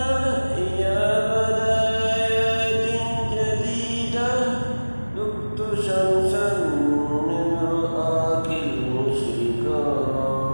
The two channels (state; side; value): inverted; both; correlation -1.00